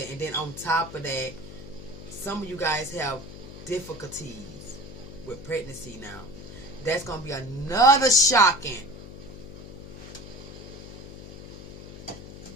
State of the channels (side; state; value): left; noise; hum, 13 dB below the sound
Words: And then on top of that, some of you guys have difficulties with pregnancy now. That's gonna be another shocking.